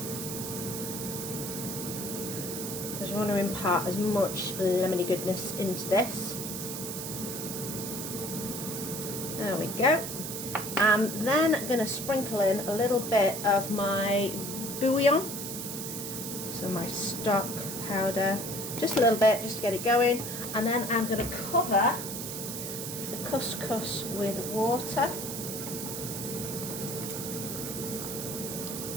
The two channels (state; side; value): noise; right; hiss, 6 dB below the sound